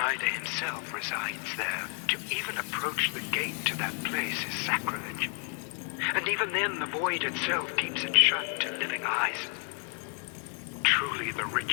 himself resides there. To even approach the gate to that place is sacrilege. And even then, the void itself keeps it shut to living eyes. Truly, the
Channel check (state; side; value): quieter; right; 38.1 dB